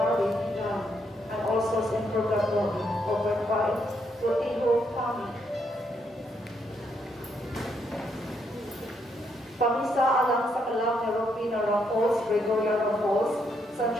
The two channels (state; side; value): normal; both; correlation 0.75